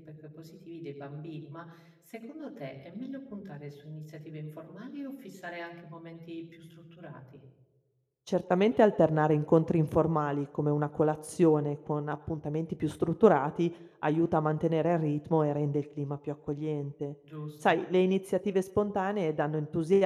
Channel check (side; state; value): both; identical; correlation 1.00